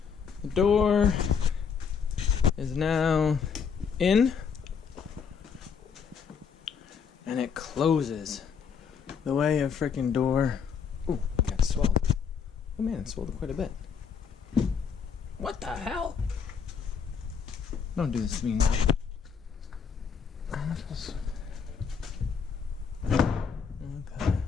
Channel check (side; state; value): right; quieter; 6.5 dB